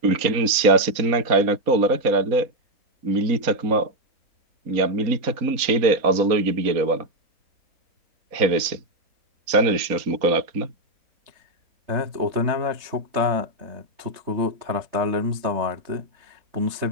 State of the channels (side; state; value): left; late; 4.2 ms